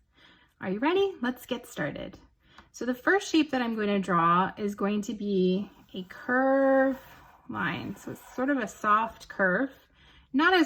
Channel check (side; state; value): both; identical; correlation 1.00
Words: Are you ready? Let's get started. So the first shape that I'm going to draw is going to be a curve line. So it's sort of a soft curve, not